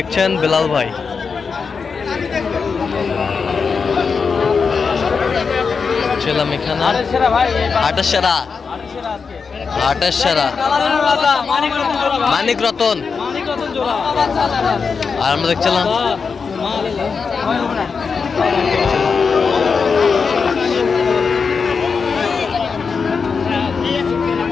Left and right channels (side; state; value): right; quieter; 5.4 dB